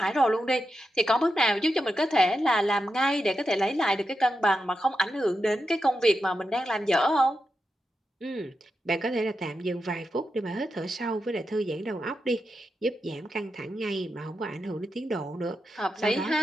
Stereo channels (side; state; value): both; normal; correlation 0.88